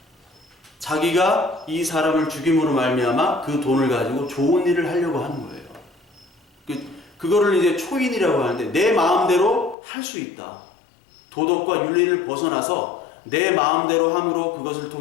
자기가 이 사람을 죽임으로 말미암아 그 돈을 가지고 좋은 일을 하려고 하는 거예요. 그거를 이제 초인이라고 하는데 내 마음대로 할 수 있다. 도덕과 윤리를 벗어나서 내 마음대로 함으로 그것을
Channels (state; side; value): drops out; right; at 9.8 s